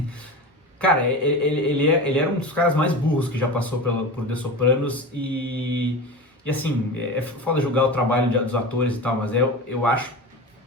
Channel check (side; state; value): both; normal; correlation 0.28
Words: Cara, ele era um dos caras mais burros que já passou por The Sopranos e assim, é foda julgar o trabalho dos atores e tal, mas eu acho